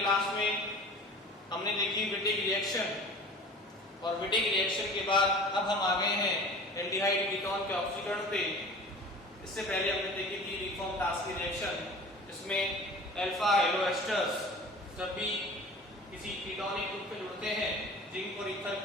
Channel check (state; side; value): normal; both; correlation 0.41